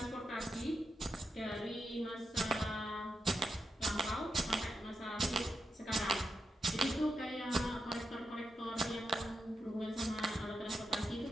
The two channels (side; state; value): both; normal; correlation 0.87